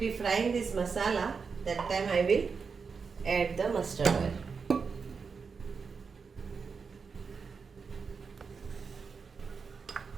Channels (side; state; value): left; quieter; 5.3 dB